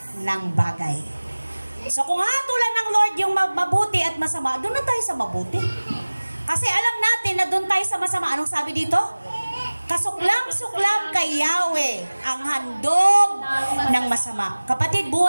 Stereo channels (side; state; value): both; inverted; correlation -1.00